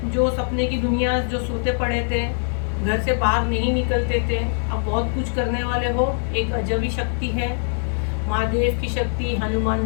जो सपने की दुनिया, जो सोते पड़े थे, घर से बाहर नहीं निकलते थे, अब बहुत कुछ करने वाले हो। एक अजबी शक्ति है, महादेव की शक्ति, हनुमान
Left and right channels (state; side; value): silent; right; 60 dB below the other